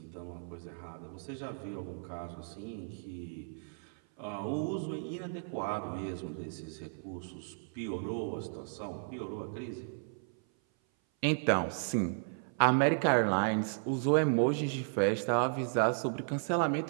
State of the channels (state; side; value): silent; left; 55 dB below the other